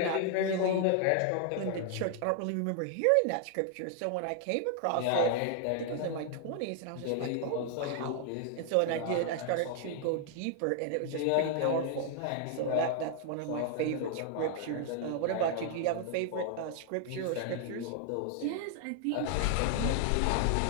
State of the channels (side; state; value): both; different; correlation 0.00